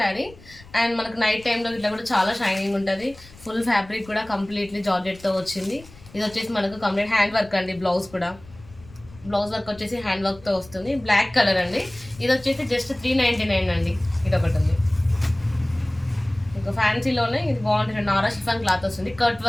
అండ్ మనకు నైట్ టైంలో ఇట్లా కూడా చాలా షైనింగ్ ఉంటుంది. ఫుల్ ఫ్యాబ్రిక్ కూడా కంప్లీట్లీ జార్జెట్తో వచ్చింది. ఇది వచ్చేసి మనకు కంప్లీట్ హ్యాండ్ వర్క్ అండి. బ్లౌజ్ కూడా బ్లౌజ్ వర్క్ వచ్చేసి హ్యాండ్ వర్క్తో వస్తుంది. బ్లాక్ కలర్ అండి. ఇది వచ్చేసి జస్ట్ 399 అండి. ఇది ఒకటి ఉంది. ఇంకా ఫ్యాన్సీలోనే ఇది బాగుంటుంది. నారా షిఫాన్ క్లాత్ వస్తుంది, కట్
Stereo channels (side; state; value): left; noise; rumble, 22 dB below the sound